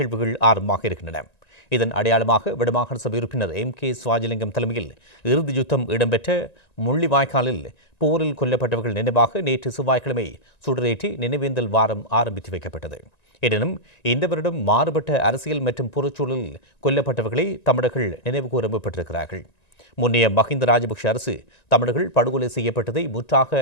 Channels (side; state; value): right; late; 1.9 ms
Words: ஆரம்பமாக இருக்கின்றன. இதன் அடையாளமாக வடமாகாண சபை உறுப்பினர் MK சிவாஜிலிங்கம் தலைமையில் இறுதி யுத்தம் இடம்பெற்ற முள்ளிவாய்க்காலில் போரில் கொல்லப்பட்டவர்கள் நினைவாக நேற்று செவ்வாய்க்கிழமை சுடரேற்றி நினைவேந்தல் வாரம் ஆரம்பித்து வைக்கப்பட்டது. எனினும் இந்த வருடம் மாறுபட்ட அரசியல் மற்றும் புறச்சூழலில் கொல்லப்பட்டவர்களை தமிழர்கள் நினைவுகூர முற்பட்டிருக்கிறார்கள். முன்னைய மஹிந்த ராஜபக்ஷ அரசு தமிழர்கள் படுகொலை செய்யப்பட்டதை முற்றாக